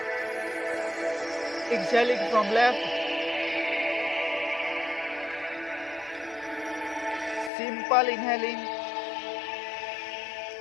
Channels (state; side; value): drops out; right; at 7.5 s